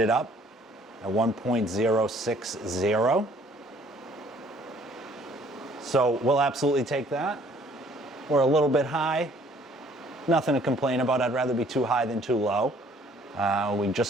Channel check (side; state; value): both; normal; correlation 0.59